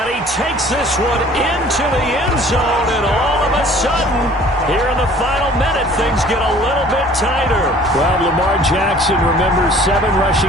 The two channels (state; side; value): normal; both; correlation 0.51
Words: he takes this one into the end zone, and all of a sudden, here in the final minute, things get a little bit tighter. Well, Lamar Jackson remembers 7